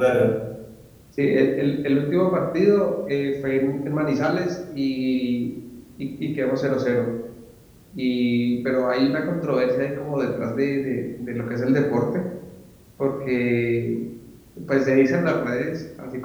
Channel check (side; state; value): both; identical; correlation 1.00